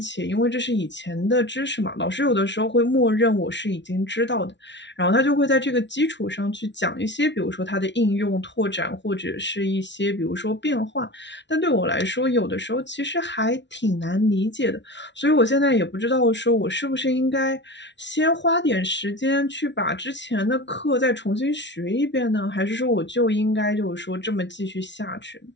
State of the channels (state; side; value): late; right; 0.52 ms